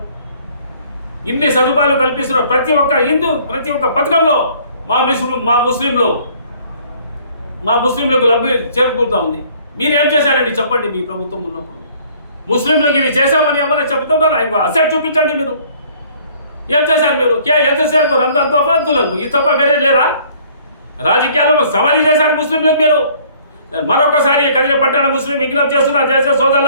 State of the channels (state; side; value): inverted; both; correlation -0.57